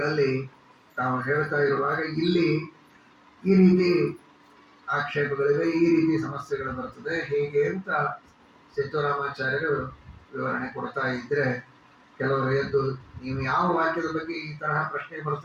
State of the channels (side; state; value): both; identical; correlation 1.00